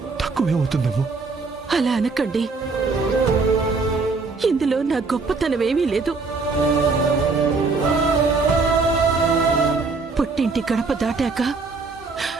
తక్కువే అవుతుందేమో. అలా అనకండి. ఇందులో నా గొప్పతనమేమీ లేదు. పుట్టింటి గడప దాటాక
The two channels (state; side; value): quieter; left; 4.1 dB